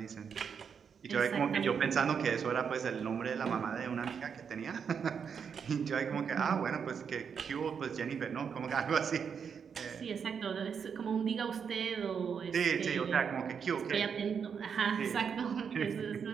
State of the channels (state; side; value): quieter; left; 6.8 dB